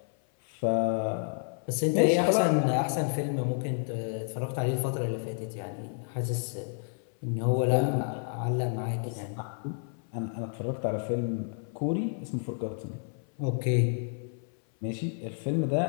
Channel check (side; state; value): right; silent; 58 dB below the other